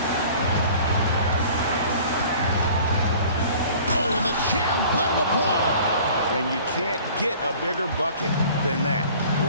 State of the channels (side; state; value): both; inverted; correlation -0.48